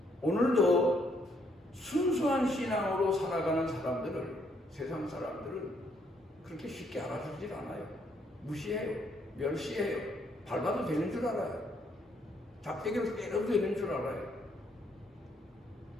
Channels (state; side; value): normal; both; correlation 0.70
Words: 오늘도 순수한 신앙으로 살아가는 사람들을, 세상 사람들은 그렇게 쉽게 알아주질 않아요. 무시해요. 멸시해요. 밟아도 되는 줄 알아요. 작대기로 때려도 되는 줄 알아요.